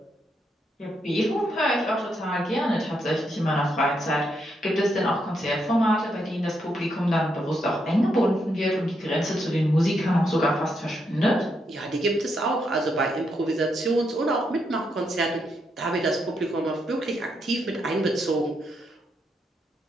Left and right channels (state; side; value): normal; both; correlation 0.80